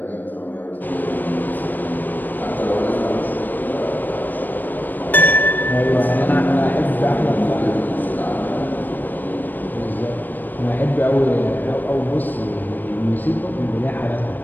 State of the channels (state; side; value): late; right; 0.090 ms